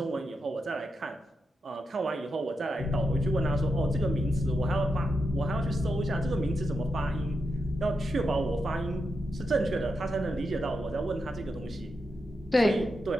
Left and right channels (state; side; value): normal; both; correlation 0.87